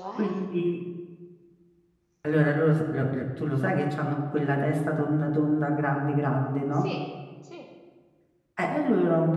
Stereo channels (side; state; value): both; identical; correlation 1.00